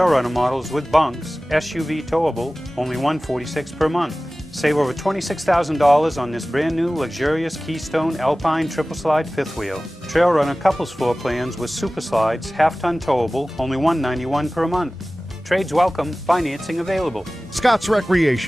Runner models with bunks, SUV towable, only $146 per month. Save over $26,000 on this brand new luxurious Keystone Alpine triple slide fifth wheel. Trail Runner couples floor plans with super slides, half-ton towable, only $191 per month. Trades welcome, financing available. Scott's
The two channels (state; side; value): normal; both; correlation 0.97